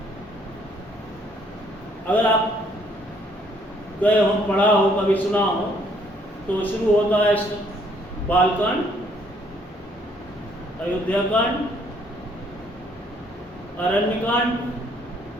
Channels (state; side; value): normal; both; correlation 0.65